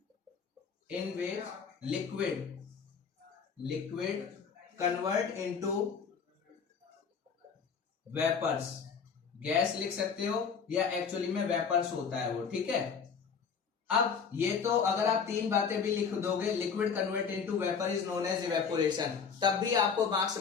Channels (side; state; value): right; quieter; 6.2 dB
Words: liquid convert into vapours. Gas लिख सकते हो या एक्चुअली में वेपर्स होता है वो, ठीक है। अब ये तो अगर आप तीन बातें भी लिख दोगे, liquid convert into vapour is known as evaporation, तब भी आपको मार्क्स